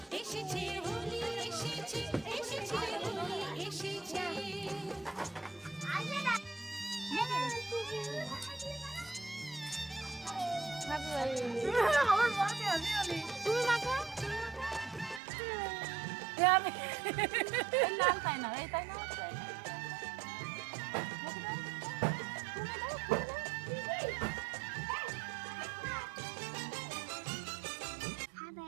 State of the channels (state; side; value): drops out; left; at 15.2 s